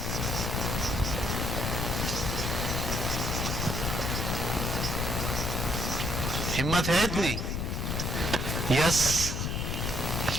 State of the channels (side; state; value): left; noise; rumble, 1 dB below the sound